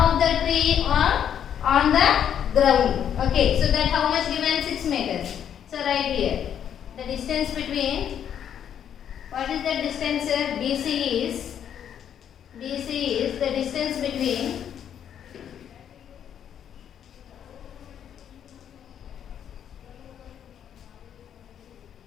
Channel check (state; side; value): quieter; right; 9.2 dB